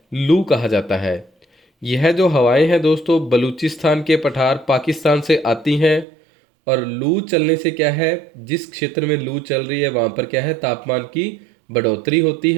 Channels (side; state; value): left; drops out; at 6.1 s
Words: लू कहा जाता है। यह जो हवाएं हैं दोस्तों बलूचिस्तान के पठार पाकिस्तान से आती हैं। और लू चलने से क्या है, जिस क्षेत्र में लू चल रही है वहाँ पर क्या है, तापमान की बढ़ोतरी होती